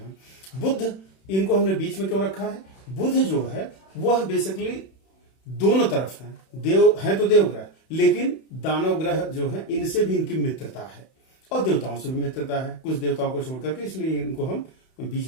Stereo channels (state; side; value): late; right; 31 ms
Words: बुध, इनको हमने बीच में क्यों रखा है? बुध जो है वह बेसिकली दोनों तरफ है, देव है तो देवग्रह, लेकिन दानव ग्रह जो है इनसे भी इनकी मित्रता है और देवताओं से भी मित्रता है, कुछ देवताओं को छोड़ करके, इसलिए इनको हम